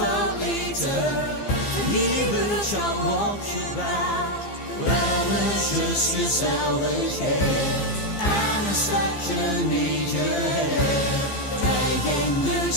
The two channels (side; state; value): right; late; 15 ms